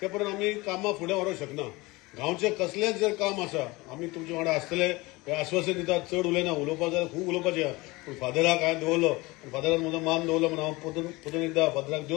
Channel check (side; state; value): right; quieter; 22.6 dB